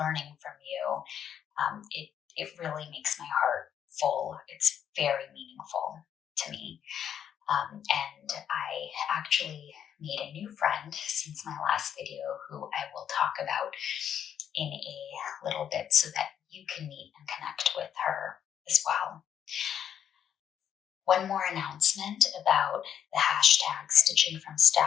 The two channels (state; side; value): quieter; right; 9.1 dB